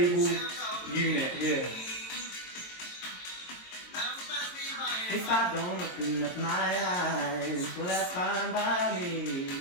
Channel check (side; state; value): right; late; 22 ms